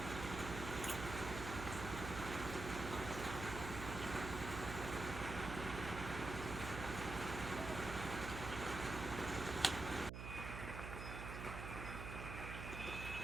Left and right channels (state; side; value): noise; right; hum, 6 dB below the sound